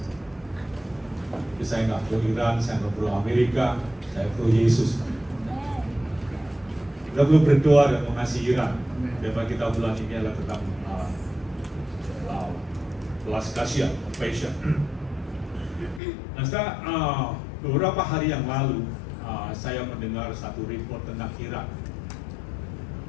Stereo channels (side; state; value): right; drops out; at 16.0 s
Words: Jadi saya nggak pro Iran, saya nggak pro Amerika, saya pro Yesus. Kita perlu berdoa dan mengasihi Iran. Tema kita bulan ini adalah tentang belas kasihan, compassion. Nah, setelah beberapa hari yang lalu, saya mendengar satu report tentang Iran.